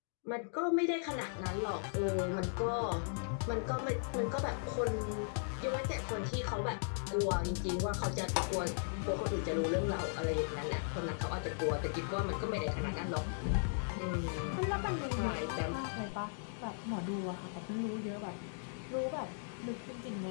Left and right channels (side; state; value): right; silent; digital silence